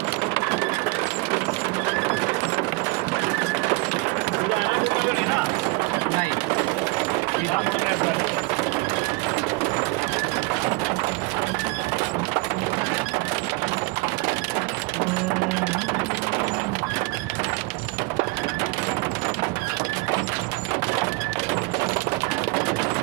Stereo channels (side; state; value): left; quieter; 24.4 dB